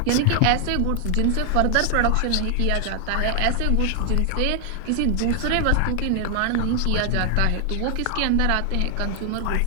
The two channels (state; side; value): different; both; correlation 0.00